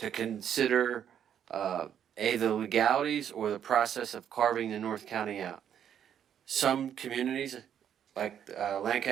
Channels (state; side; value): quieter; left; 9.2 dB